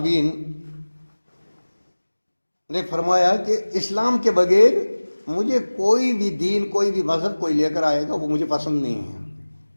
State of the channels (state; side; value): inverted; both; correlation -1.00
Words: نے فرمایا کہ اسلام کے بغیر مجھے کوئی بھی دین، کوئی بھی مذہب کوئی لے کر آئے گا وہ مجھے پسند نہیں ہے۔